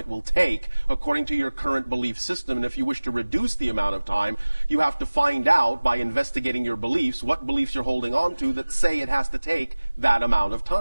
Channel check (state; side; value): inverted; both; correlation -1.00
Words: it will take according to your current belief system. And if you wish to reduce the amount of time, you have to find out by investigating your beliefs what beliefs you're holding on to that say it has to take that amount of